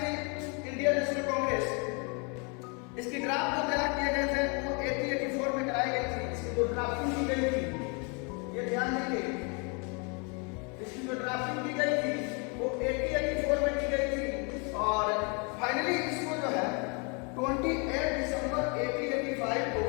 थी इंडियन नेशनल कांग्रेस इसकी ड्राफ्ट जो तैयार किए गए थे वो 1884 में कराई गई थी। इसकी जो ड्राफ्टिंग की गई थी ये ध्यान देंगे, इसकी जो ड्राफ्टिंग की गई थी वो 1884 में की गई थी और फाइनली इसको जो है 28 दिसंबर 1885 को,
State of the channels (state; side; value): quieter; right; 34.0 dB